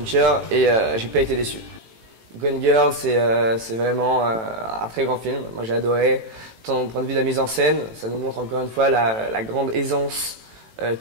et j'ai pas été déçu. Gone Girl, c'est vraiment un très grand film. Moi, j'ai adoré. Tant au point de vue de la mise en scène, ça nous montre encore une fois la grande aisance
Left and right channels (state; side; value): late; left; 18 ms